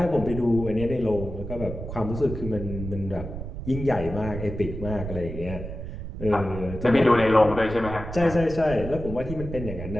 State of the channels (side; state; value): right; noise; rumble, 8 dB below the sound